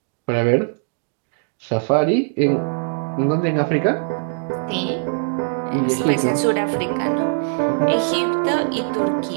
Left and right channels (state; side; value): silent; left; digital silence